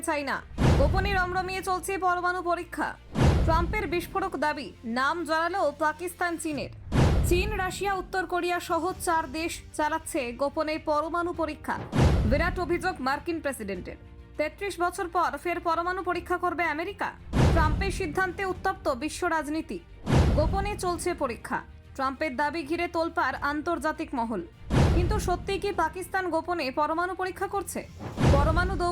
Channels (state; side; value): identical; both; correlation 1.00